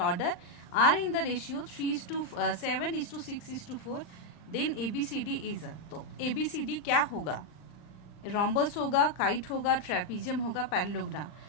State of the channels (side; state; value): right; late; 39 ms